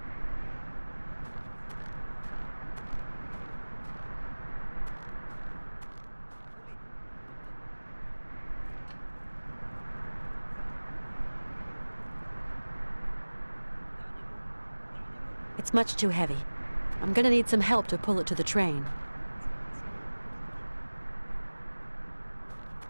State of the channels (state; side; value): inverted; both; correlation -1.00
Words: It's much too heavy. I'm gonna need some help to pull it to the train.